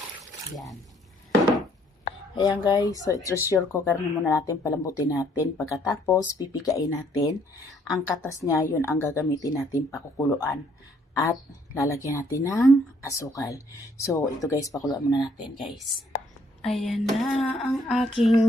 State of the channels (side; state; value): both; normal; correlation 0.65